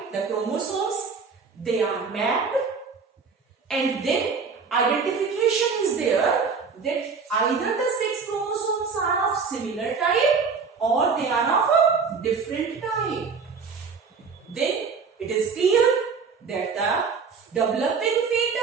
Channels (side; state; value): left; quieter; 5.2 dB